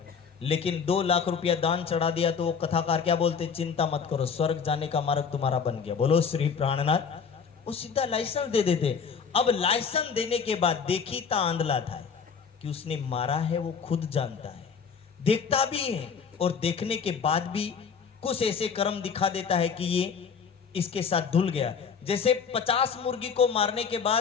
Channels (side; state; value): right; quieter; 6.2 dB